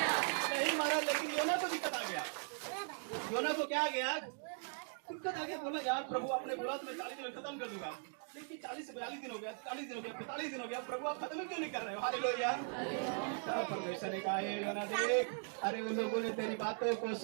नहीं मारा, लेकिन योना को दिक्कत आ गया। योना को क्या आ गया, दिक्कत आ गया। बोला यार प्रभु आपने बोला तो मैं 40 दिन में खत्म कर दूंगा, लेकिन 40 से 42 दिन हो गया, 40 दिन हो गया, 45 दिन हो गया, प्रभु आप खत्म क्यों नहीं कर रहे हो। हालेलुया। परमेश्वर ने कहा योना देख, अरे उन लोगों ने तेरी बातों को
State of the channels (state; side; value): silent; left; 52 dB below the other